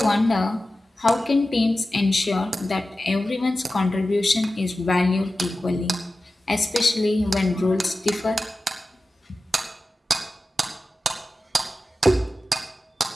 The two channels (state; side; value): normal; both; correlation 0.94